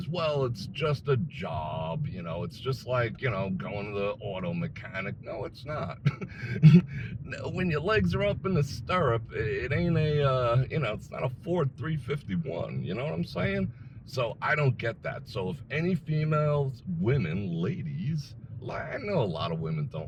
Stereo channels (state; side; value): identical; both; correlation 1.00